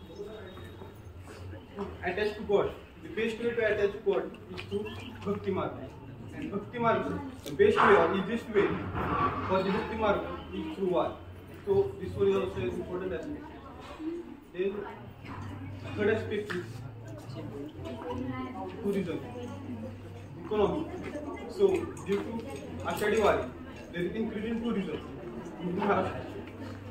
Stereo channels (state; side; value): identical; both; correlation 1.00